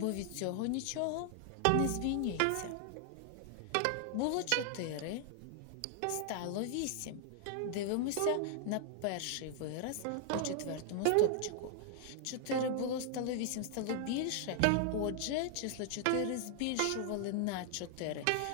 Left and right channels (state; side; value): different; both; correlation 0.00